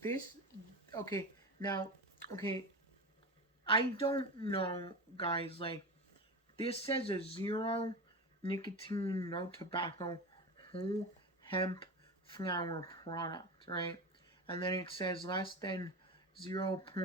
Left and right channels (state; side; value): normal; both; correlation 0.25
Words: okay, now, okay, I don't know, guys, like, this says a 0 nicotine, no tobacco, whole hemp flower product, right? And then it says less than